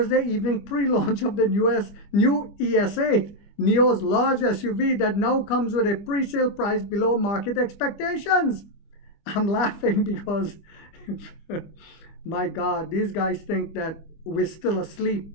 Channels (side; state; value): right; late; 25 ms